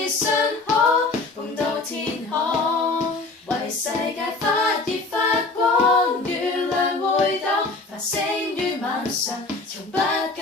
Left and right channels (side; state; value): right; quieter; 3.5 dB